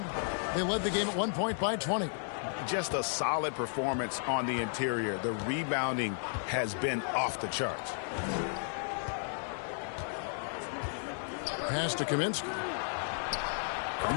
They led the game at 1 point by 20. Just a solid performance on the interior. The rebounding has been off the charts. Pass to Kaminsky.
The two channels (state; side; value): silent; right; digital silence